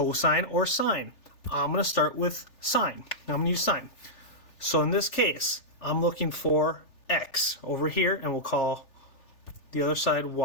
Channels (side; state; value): right; late; 3.4 ms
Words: or sine. I'm going to start with sine. I'm going to use sine. So in this case, I'm looking for x over here, and we'll call the other side